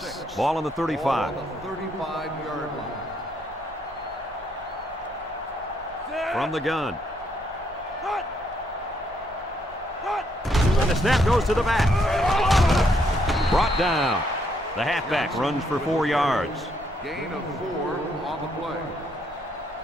Ball on the 35. Ball on the 35-yard line. From the gun. And the snap goes to the back. Brought down. The halfback runs for 4 yards. Gain of 4 on the play.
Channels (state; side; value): normal; both; correlation 0.73